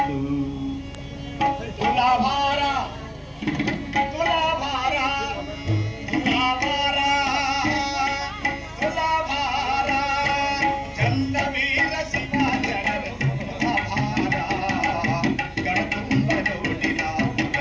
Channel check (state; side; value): identical; both; correlation 1.00